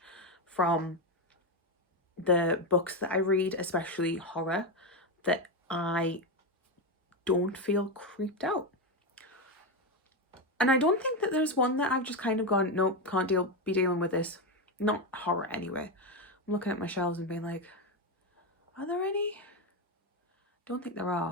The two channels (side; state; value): both; normal; correlation 0.10